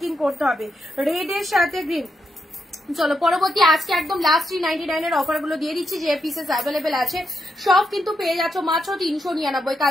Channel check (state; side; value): normal; both; correlation 0.82